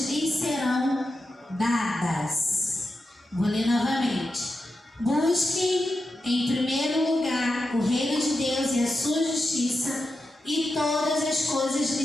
lhes serão dadas. Vou ler novamente. Busquem em primeiro lugar o reino de Deus e a sua justiça, e todas as coisas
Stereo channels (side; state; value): both; normal; correlation 0.89